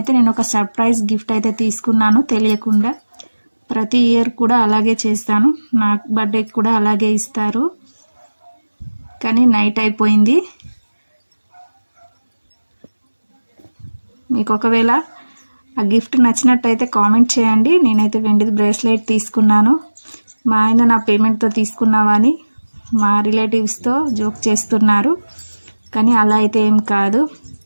నేను ఒక సర్ప్రైజ్ గిఫ్ట్ అయితే తీసుకున్నాను తెలియకుండా. ప్రతి ఇయర్ కూడా అలాగే చేస్తాను, నా బర్త్డేకి కూడా అలాగే ఇస్తారు. కానీ నైట్ అయిపోయింది. మీకు ఒకవేళ ఆ గిఫ్ట్ నచ్చినట్టయితే కామెంట్ చేయండి. నేనైతే వెండిది బ్రేస్లెట్ తీసుకున్నాను. మా ఆయన నా పేమెంట్తో తీసుకున్నావా అని మా రిలేటివ్స్తో జోక్ చేస్తున్నారు, కానీ అలా అయితే ఏం కాదు.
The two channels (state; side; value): inverted; both; correlation -1.00